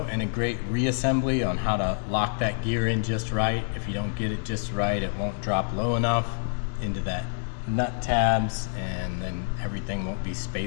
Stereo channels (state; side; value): silent; right; digital silence